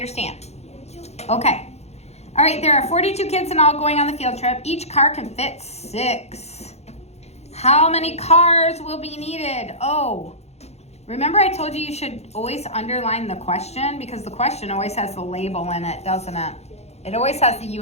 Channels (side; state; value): right; late; 0.31 ms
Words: Okay. All right, there are 42 kids in all going on the field trip. Each car can fit 6. How many cars will be needed? Oh, remember I told you should always underline the question because the question always has the label in it, doesn't it? It always has the